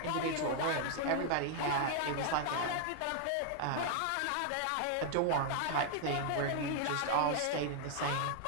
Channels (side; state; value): both; different; correlation 0.00